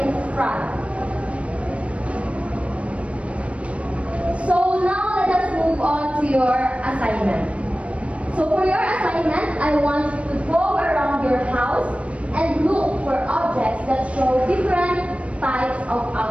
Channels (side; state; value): left; late; 0.063 ms